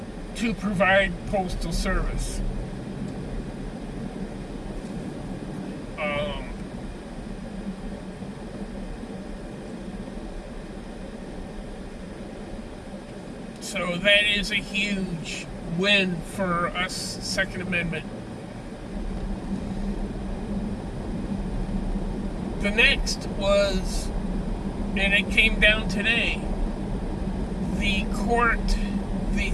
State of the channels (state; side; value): identical; both; correlation 1.00